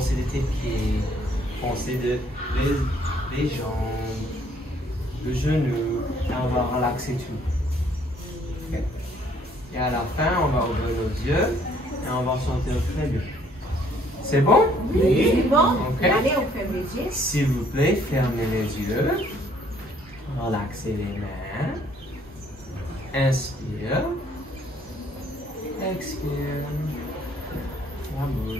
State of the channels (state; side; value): normal; both; correlation 0.63